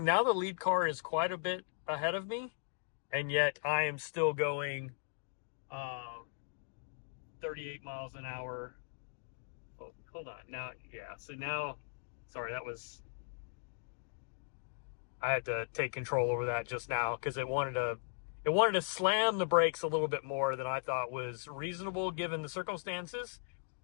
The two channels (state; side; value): silent; right; digital silence